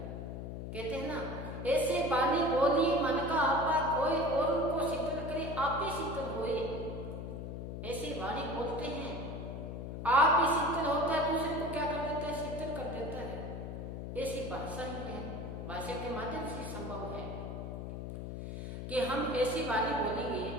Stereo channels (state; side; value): noise; left; hum, 6 dB below the sound